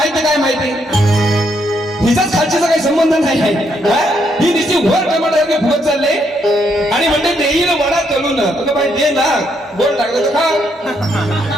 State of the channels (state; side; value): normal; both; correlation 0.75